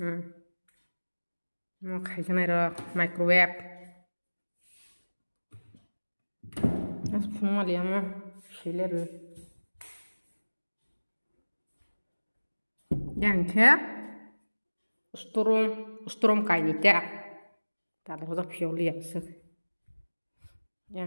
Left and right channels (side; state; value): both; inverted; correlation -1.00